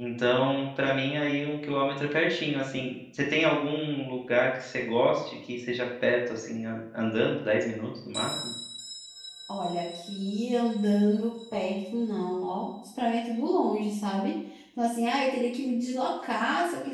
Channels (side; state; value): both; identical; correlation 1.00